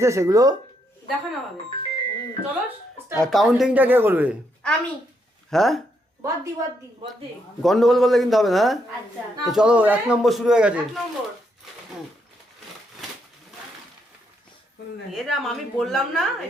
সেগুলো দেখানো হবে। চলো কাউন্টিংটা কে করবে? আমি। হ্যাঁ বদ্দি গন্ডগোল করলে কিন্তু হবে না। আচ্ছা তো চলো 1 নম্বর শুরু হয়ে গেছে। 1 নম্বর এরাম আমি বললাম না,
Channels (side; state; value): both; normal; correlation 0.77